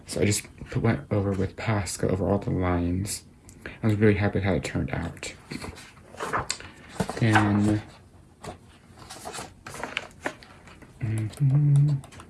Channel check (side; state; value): both; identical; correlation 1.00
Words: so I just went over with Posca over all the lines. I was really happy with how it turned out. Then